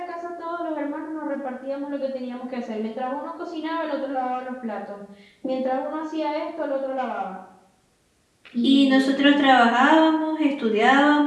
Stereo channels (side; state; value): both; identical; correlation 1.00